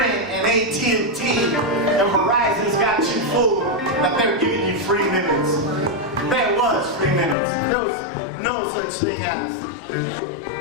and AT&T and Verizon's got you fooled that they're giving you free minutes. There was free minutes. There was no such thing as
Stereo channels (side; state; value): right; drops out; at 7.4 s